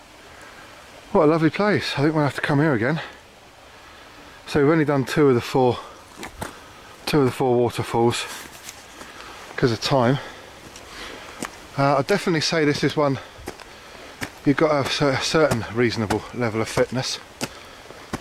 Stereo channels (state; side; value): identical; both; correlation 1.00